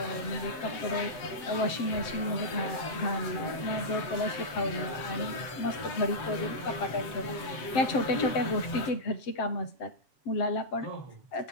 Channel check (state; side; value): late; right; 7.8 ms